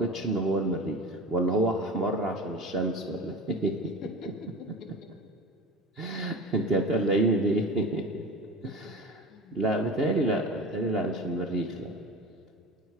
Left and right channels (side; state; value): both; normal; correlation 0.33